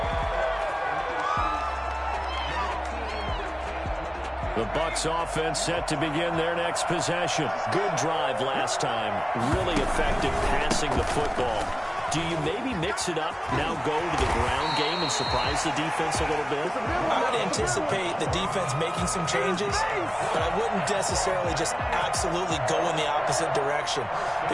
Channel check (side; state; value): both; identical; correlation 1.00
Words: The Bucs offense set to begin their next possession. Good drive last time. Really effective passing the football. Do you maybe mix it up, now go to the ground game and surprise the defense a little bit? I would anticipate the defense making some changes, but I wouldn't necessarily just absolutely go in the opposite direction.